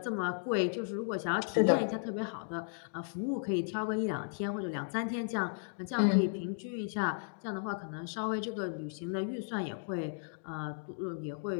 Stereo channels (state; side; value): silent; right; digital silence